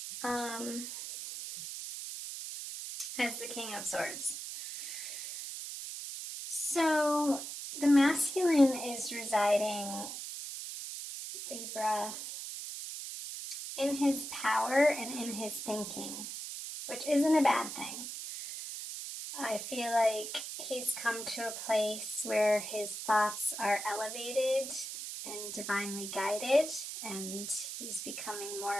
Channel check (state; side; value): noise; right; hiss, 7 dB below the sound